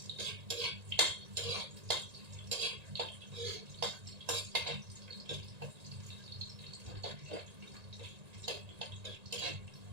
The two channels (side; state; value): left; late; 1.8 ms